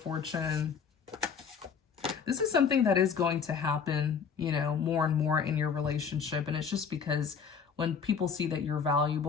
This is something that is going to happen, you know, more and more in your relationship. And it's just because when people see that you're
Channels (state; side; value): quieter; right; 6.4 dB